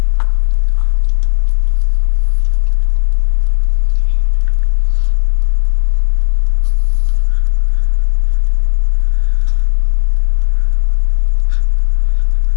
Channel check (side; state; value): right; silent; digital silence